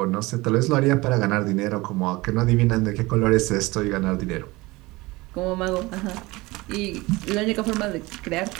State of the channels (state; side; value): quieter; left; 21.7 dB